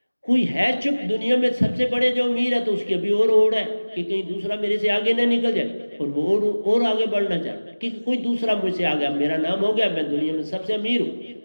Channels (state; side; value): inverted; both; correlation -1.00